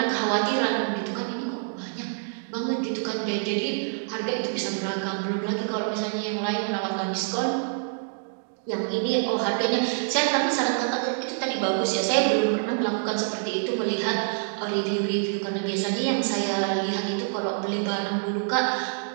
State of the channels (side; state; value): left; silent; digital silence